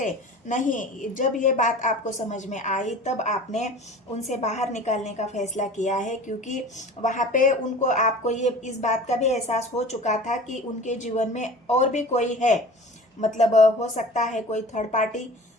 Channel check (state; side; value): normal; both; correlation 0.40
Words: नहीं। जब ये बात आपको समझ में आई, तब आपने उनसे बाहर निकलने का फैसला किया है, क्योंकि वहाँ पे उनको आपको ये इस बात का भी एहसास हो चुका था कि उनके जीवन में और भी कोई है, मतलब हो सकता है कोई थर्ड पार्टी,